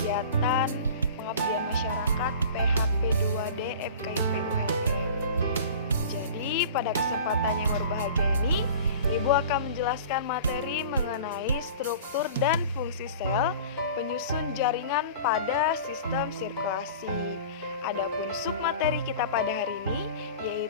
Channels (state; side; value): inverted; both; correlation -0.40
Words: pengabdian masyarakat PHP 2D FKIP ULM. Jadi pada kesempatan yang berbahagia ini, Ibu akan menjelaskan materi mengenai struktur dan fungsi sel penyusun jaringan pada sistem sirkulasi. Adapun submateri kita pada hari ini